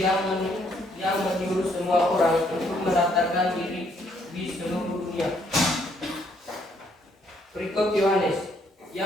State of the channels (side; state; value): both; normal; correlation 0.69